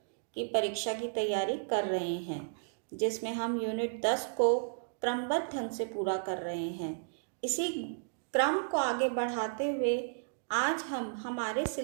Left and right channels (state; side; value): silent; left; digital silence